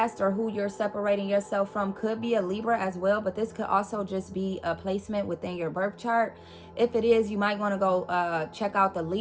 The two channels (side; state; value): both; identical; correlation 1.00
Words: or who you're separating yourself from could be a Libra as well, but this could also just be a placement within your birth chart. If it is, you might want to go check out the